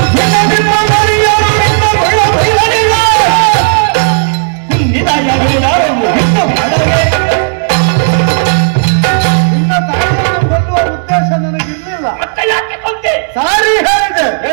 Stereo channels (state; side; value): silent; left; digital silence